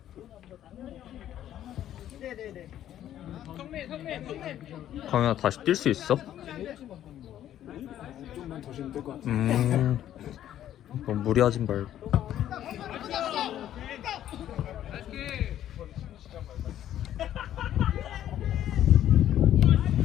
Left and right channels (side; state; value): right; quieter; 11.6 dB